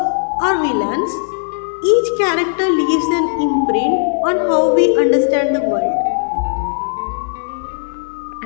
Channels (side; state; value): right; silent; 66 dB below the other